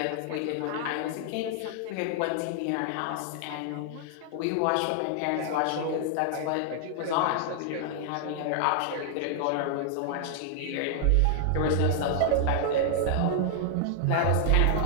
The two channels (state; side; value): different; both; correlation 0.00